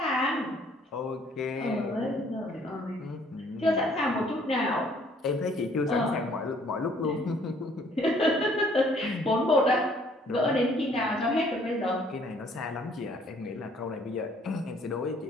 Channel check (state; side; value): normal; both; correlation 0.61